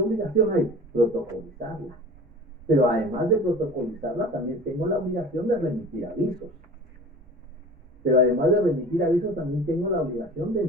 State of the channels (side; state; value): both; normal; correlation 0.39